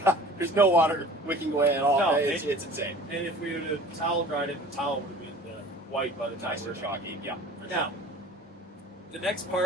there's no water wicking away at all. No, it's insane. And if we would have towel dried it, the towel would have been white by the time Nice we're and chalky. Yeah. Now, the next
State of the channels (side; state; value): both; normal; correlation 0.44